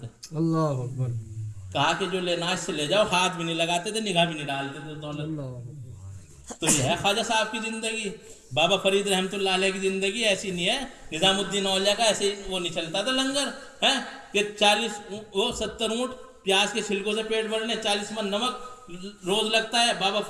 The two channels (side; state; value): both; identical; correlation 1.00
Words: اللہ اکبر. کہا کہ جو لینا اس سے لے جاؤ، ہاتھ بھی نہیں لگاتے تھے، نگاہ بھی نہیں ڈالتے تھے دولت. تو یہ ہے خواجہ صاحب کی زندگی. بابا فرید رحمۃ اللہ علیہ کی زندگی ایسی نہیں ہے. نظام الدین اولیاء کا ایسے وہ نہیں چلتا تھا لنگر ہے کہ 70 اونٹ پیاز کے چھلکوں سے پیٹ بھرنے، 40 من نمک روز لگتا ہے. بابا